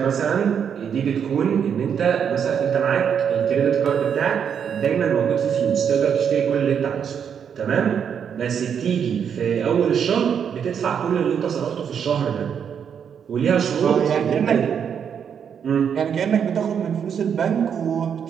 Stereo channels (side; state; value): left; quieter; 7.7 dB